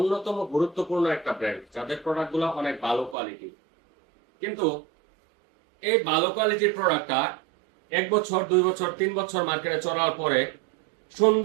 গুরুত্বপূর্ণ একটা ব্র্যান্ড, যাদের প্রোডাক্ট গুলো অনেক ভালো কোয়ালিটি। কিন্তু এই ভালো কোয়ালিটির প্রোডাক্টটা 1 বছর, 2 বছর, 3 বছর মার্কেটে চলার পরে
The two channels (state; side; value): drops out; left; at 3.2 s